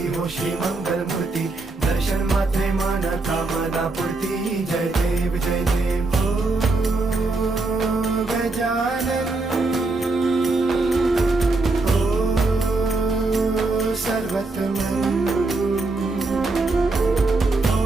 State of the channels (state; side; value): quieter; left; 3.4 dB